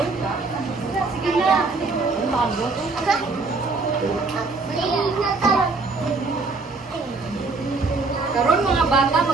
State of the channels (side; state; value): left; quieter; 3.9 dB